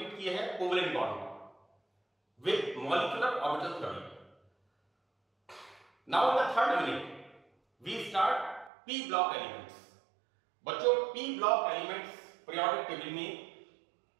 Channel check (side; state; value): left; drops out; at 8.7 s